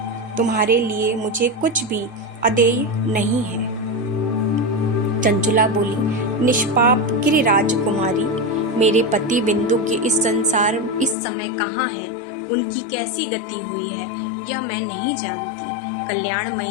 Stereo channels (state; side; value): drops out; right; at 11.2 s